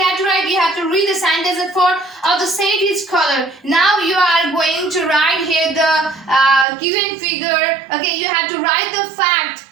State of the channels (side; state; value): left; drops out; at 6.7 s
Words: have to write? You have to read the sentence at 4 of the set is color. Now you are going to write here the given figure. Okay, you have to write the fact.